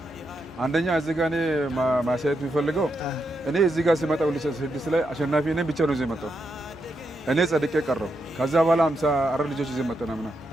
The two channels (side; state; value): both; normal; correlation 0.83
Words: አንደኛ እዚህ ጋር እኔ ማሳየት የሚፈልገው እኔ እዚህ ጋር ሲመጣ 2006 ላይ አሸናፊ እኔ ብቻ ነው እዚህ መጣሁ። እኔ ጸድቄ ቀረው። ከዛ በኋላ 54 ልጆች ይዘን መጣን አምና።